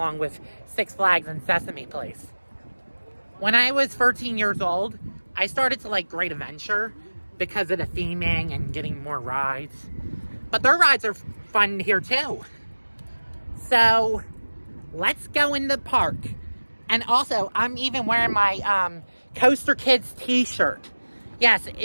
with Six Flags and Sesame Place. When I was 13 years old, I started to like Great Adventure because of the theming and getting more rides. But their rides are fun here too. So, let's go in the park. And also, I'm even wearing my Coaster Kids t-shirt. Yes,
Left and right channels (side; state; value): both; inverted; correlation -1.00